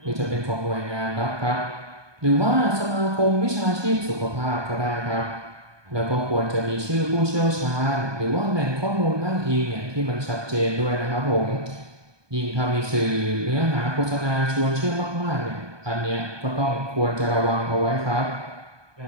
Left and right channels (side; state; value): left; late; 1.2 ms